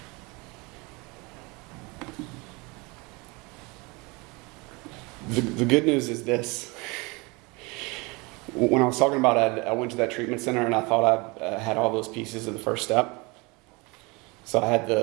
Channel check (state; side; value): quieter; left; 26.6 dB